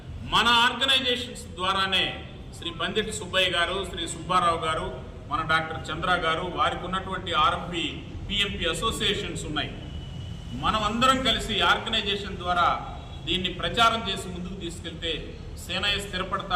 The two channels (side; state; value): both; identical; correlation 1.00